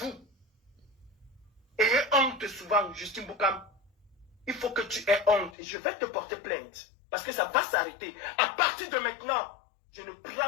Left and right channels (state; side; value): drops out; right; at 5.6 s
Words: Ayez honte souvent, Justine Boukam. Il faut que tu aies honte. Et je vais te porter plainte. Parce que ça va s'arrêter. À partir de maintenant, je ne